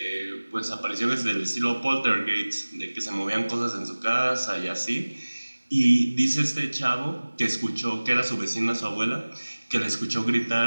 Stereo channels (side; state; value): both; inverted; correlation -1.00